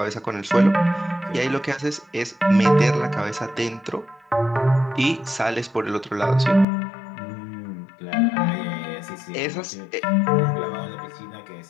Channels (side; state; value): right; drops out; at 6.7 s